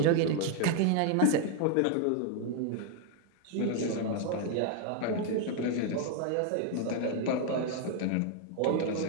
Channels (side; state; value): both; different; correlation 0.01